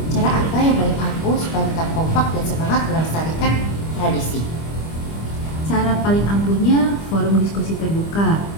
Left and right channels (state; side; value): late; right; 25 ms